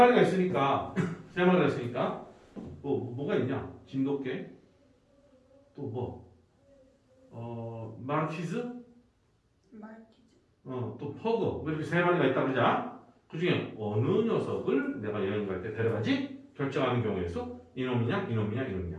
있으니까 뭐가 있냐? 진돗개 또 말티즈 또 퍼그 이렇게 3마리가 있다 그러자. 그 중에 어느 녀석을 내가 여행 갈 때 데려가지 결정하는 경우의 수 이놈이냐, 이놈이냐, 이놈이냐.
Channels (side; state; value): both; identical; correlation 1.00